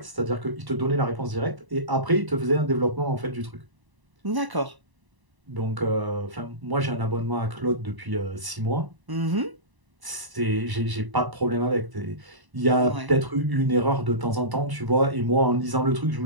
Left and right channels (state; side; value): late; left; 1.0 ms